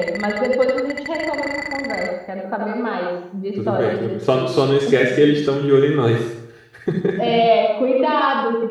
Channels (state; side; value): identical; both; correlation 1.00